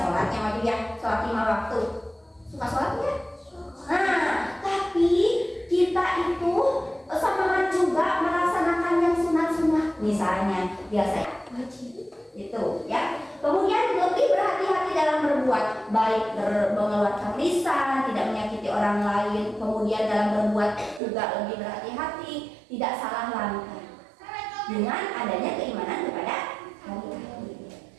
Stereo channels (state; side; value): drops out; left; at 21.0 s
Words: yang wajib ya, sholat 5 waktu. Suka sholat ya? Nah, tapi kita itu semangat juga melaksanakan yang sunat-sunat, misalnya biasa wajib itu ya. Kemudian lebih berhati-hati dalam berbuat baik, mengeluarkan lisan, tidak menyakiti orang lain. Kemudian dalam berbuat juga lebih berhati-hati, tidak salah langkah dengan adanya keimanan kepada hari akhir.